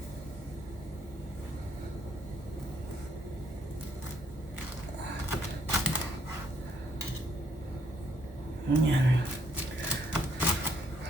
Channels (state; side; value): normal; both; correlation 0.69